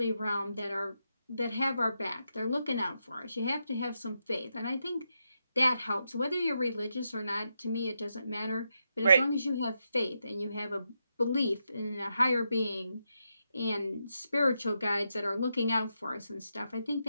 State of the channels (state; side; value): inverted; both; correlation -0.84